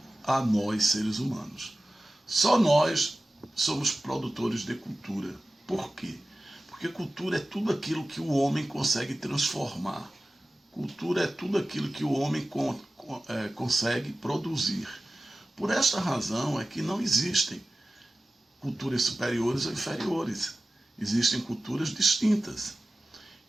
a nós, seres humanos. Só nós somos produtores de cultura. Por quê? Porque cultura é tudo aquilo que o homem consegue transformar. Cultura é tudo aquilo que o homem consegue produzir. Por esta razão é que não existem culturas superiores ou inferiores. Existem culturas distintas.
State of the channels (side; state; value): both; normal; correlation 0.96